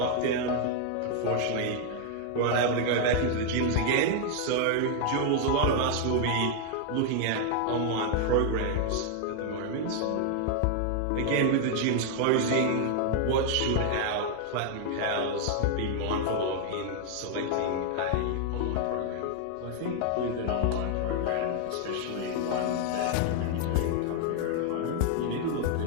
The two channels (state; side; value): different; both; correlation 0.00